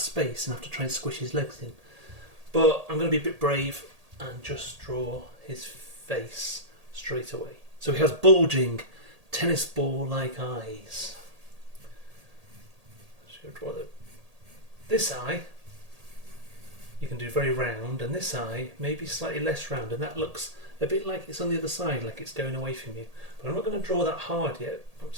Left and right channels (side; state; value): left; late; 1.8 ms